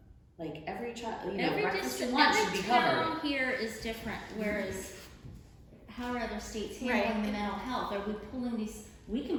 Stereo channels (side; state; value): both; identical; correlation 1.00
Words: like, every child, you know, breakfast and lunch should be covered. Every town here is different, whereas how are other states handling the mental health? Are we pulling these we can